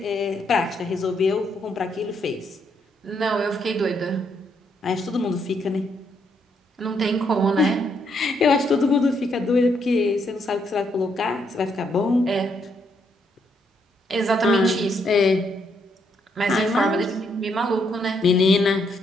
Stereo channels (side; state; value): both; normal; correlation 0.75